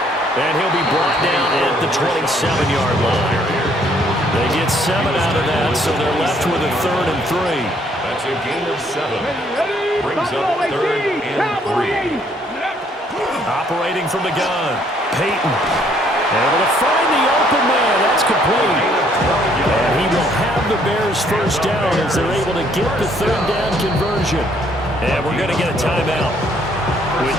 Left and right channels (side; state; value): both; normal; correlation 0.65